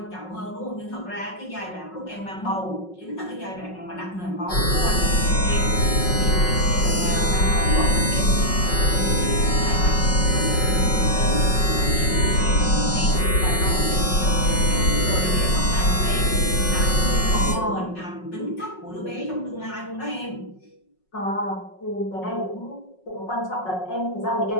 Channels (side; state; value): right; late; 5.4 ms